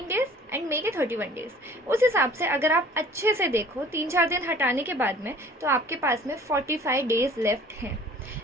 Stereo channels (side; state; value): both; normal; correlation 0.49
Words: डेज़ एंड मई के 31 डेज़, उस हिसाब से अगर आप अच्छे से देखो 3-4 दिन हटाने के बाद में, तो आपके पास में 45 डेज़ लेफ्ट हैं।